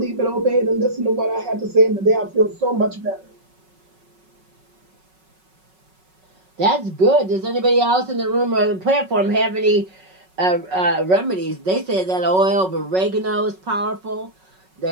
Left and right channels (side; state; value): left; late; 5.4 ms